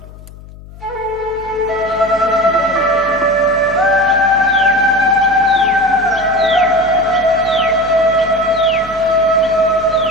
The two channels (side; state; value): left; noise; hum, 18 dB below the sound